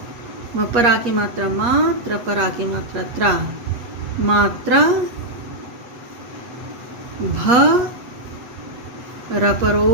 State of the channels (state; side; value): late; left; 8.4 ms